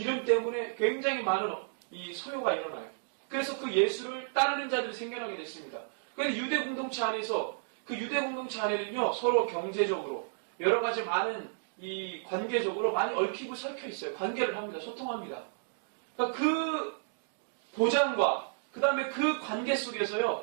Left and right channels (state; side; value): silent; left; digital silence